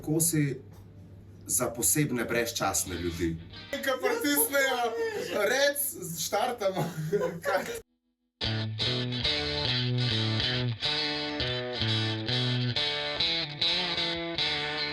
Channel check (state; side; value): identical; both; correlation 1.00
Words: kosi za posebne brezčasne ljudi. Kaj pritisnejo, rec, štartamo.